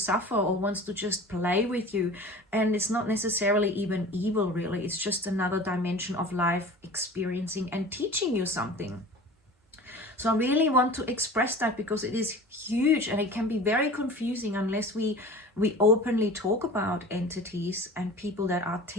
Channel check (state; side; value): normal; both; correlation 0.39